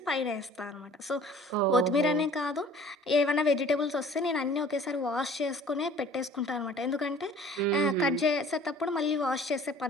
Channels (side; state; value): both; normal; correlation 0.49